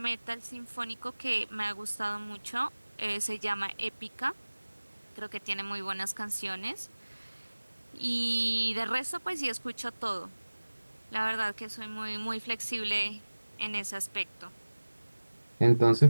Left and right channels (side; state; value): both; inverted; correlation -1.00